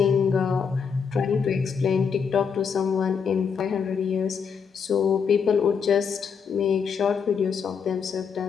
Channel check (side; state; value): right; quieter; 6.4 dB